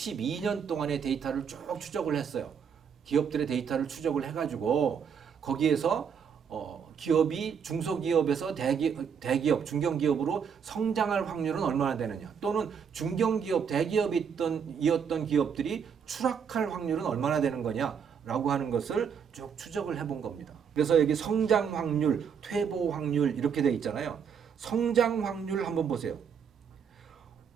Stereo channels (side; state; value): left; quieter; 7.1 dB